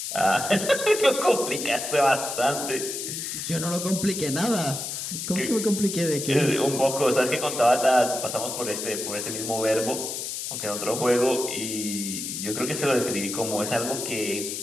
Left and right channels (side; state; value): left; noise; hiss, 5 dB below the sound